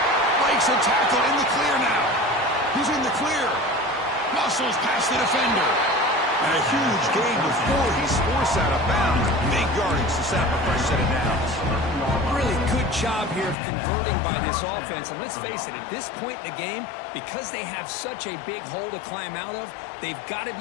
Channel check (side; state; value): right; drops out; at 13.6 s